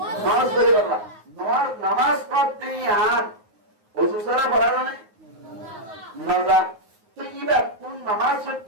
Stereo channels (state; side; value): late; left; 9.5 ms